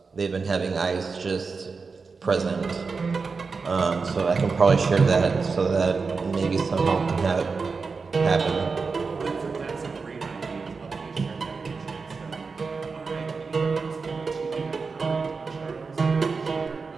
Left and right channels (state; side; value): quieter; left; 4.7 dB